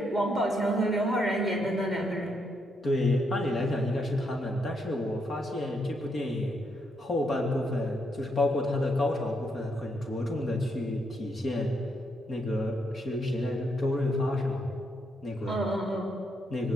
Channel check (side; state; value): both; normal; correlation 0.77